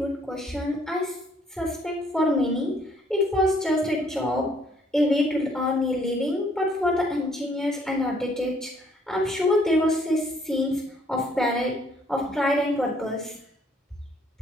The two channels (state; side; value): normal; both; correlation 0.64